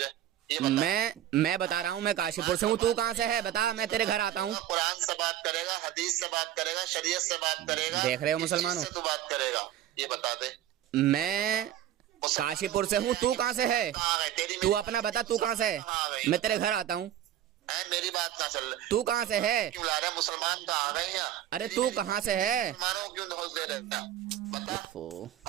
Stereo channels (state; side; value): quieter; left; 11.8 dB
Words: मैं बता रहा हूँ, मैं काशीपुर से हूँ, तू कहाँ से है बता, मैं तेरे घर आता हूँ। कुरान से बात करेगा, हदीस से बात करेगा, शरीयत से बात करेगा। देख रहे हो मुसलमानों, तू बात करेगा, ये बता दे। मैं काशीपुर से हूँ, तू कहाँ से है? तू अपना बता, तू कहाँ से है? मैं तेरे घर आता हूँ। मेरी बात ना चल, तू कहाँ से है? क्यों ला रहा है? मुसलमान कहाँ आ गए हैं? अरे तू कहाँ से है? मुसलमानों क्यों धोस दे रहे हैं? बता।